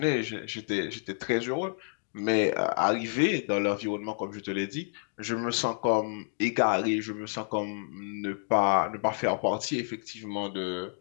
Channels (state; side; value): silent; right; digital silence